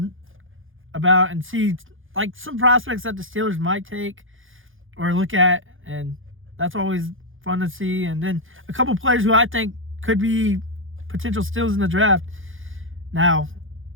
about, and see some prospects that the Steelers might take or look at, and that's always fun to see. And then a couple players who I think could be potential steals in the draft. Now,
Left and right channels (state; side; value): late; left; 0.58 ms